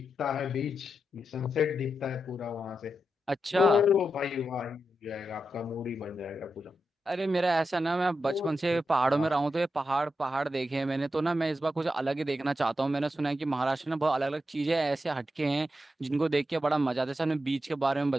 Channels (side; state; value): both; normal; correlation 0.87